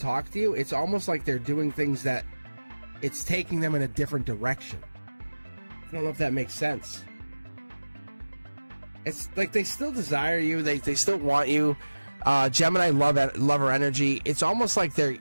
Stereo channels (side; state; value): both; inverted; correlation -1.00